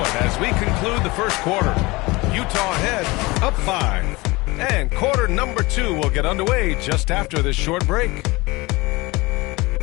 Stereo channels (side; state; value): right; quieter; 23.0 dB